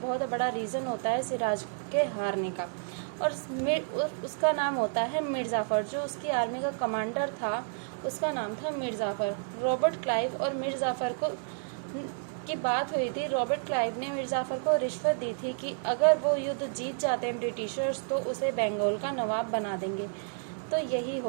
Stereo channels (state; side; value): silent; left; digital silence